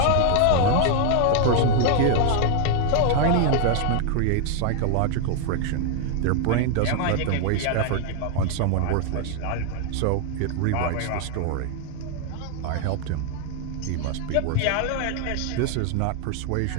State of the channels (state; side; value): different; both; correlation 0.00